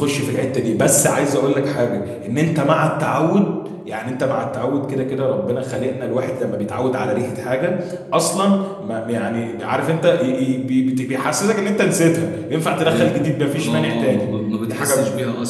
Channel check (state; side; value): identical; both; correlation 1.00